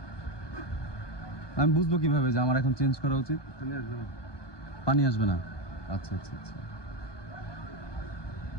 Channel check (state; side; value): late; right; 1.2 ms